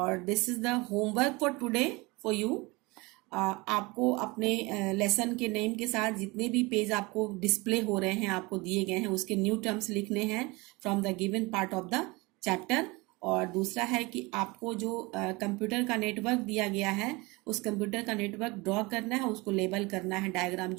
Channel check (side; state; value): left; quieter; 24.4 dB